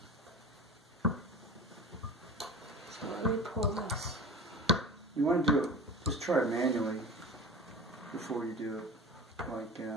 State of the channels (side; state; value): both; normal; correlation 0.34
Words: So let me pull this. You want to do it, just try it manually before you do it. Like,